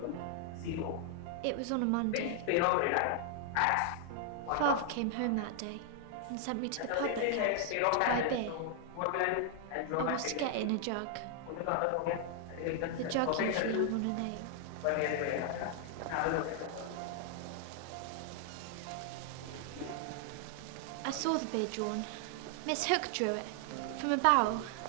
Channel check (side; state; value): both; different; correlation 0.00